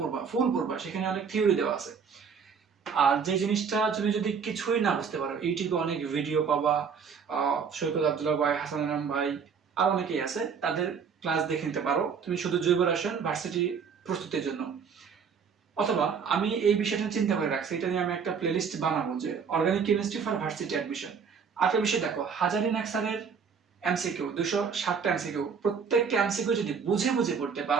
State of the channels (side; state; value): left; quieter; 6.3 dB